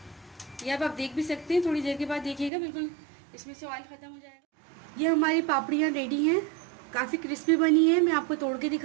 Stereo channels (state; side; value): drops out; left; at 2.5 s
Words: ये आप देख भी सकते हैं, थोड़ी देर के बाद देखिएगा बिल्कुल इसमें से ऑयल ख़त्म हो जाएगा। ये हमारी पापड़ियाँ रेडी हैं, काफ़ी क्रिस्पी बनी है। मैं आपको तोड़ के